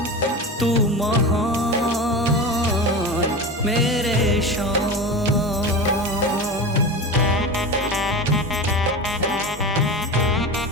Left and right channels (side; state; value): both; normal; correlation 0.27